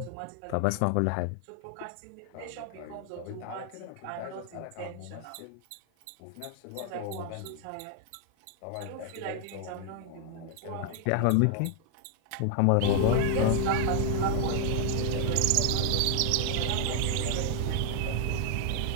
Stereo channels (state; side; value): different; both; correlation 0.00